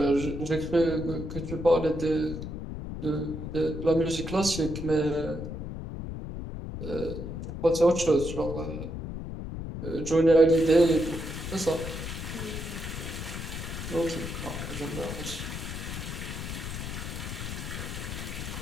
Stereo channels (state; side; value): noise; left; rumble, 6 dB below the sound